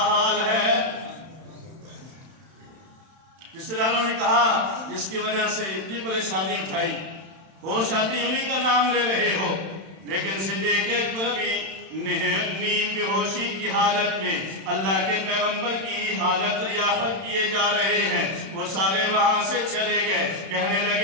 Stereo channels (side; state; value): left; late; 31 ms